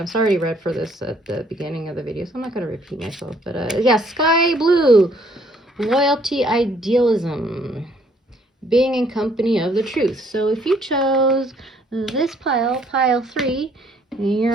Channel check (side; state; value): both; normal; correlation 0.64